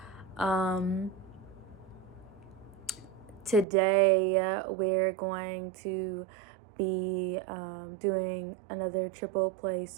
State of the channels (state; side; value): drops out; left; at 3.7 s